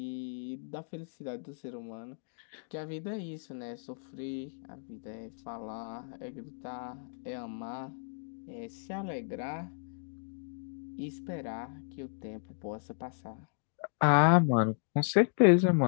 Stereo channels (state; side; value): silent; right; digital silence